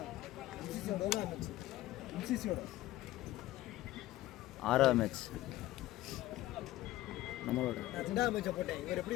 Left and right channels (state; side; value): quieter; right; 15.7 dB